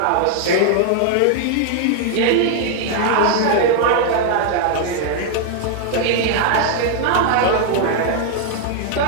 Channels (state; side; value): different; both; correlation 0.00